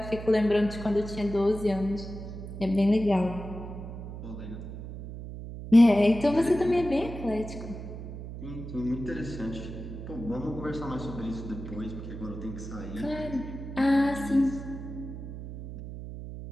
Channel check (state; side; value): noise; right; hum, 10 dB below the sound